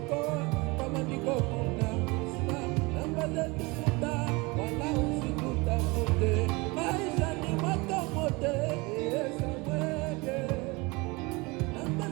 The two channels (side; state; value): left; quieter; 25.3 dB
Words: kama niko kuna sima. Namba zetu futa, wala usitutafute, maisha ni moto mote, Samuele. Namba